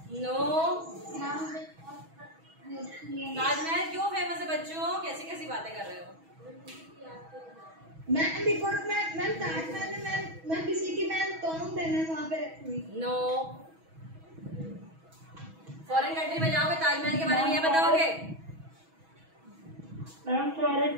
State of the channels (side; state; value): left; late; 6.2 ms